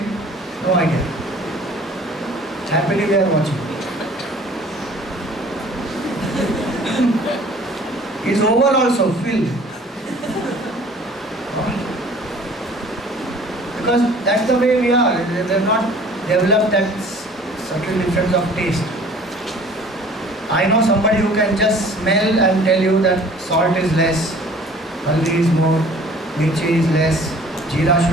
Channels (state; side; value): normal; both; correlation 0.50